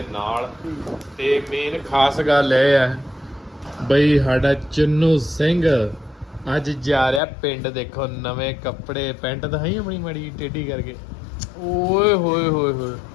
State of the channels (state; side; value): drops out; right; at 7.2 s